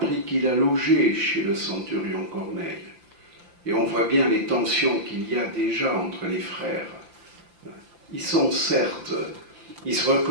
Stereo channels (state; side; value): late; left; 5.8 ms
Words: qu'il a logé chez le centurion Corneille. Et on voit bien les tensions qu'il y a déjà entre les frères. Ils se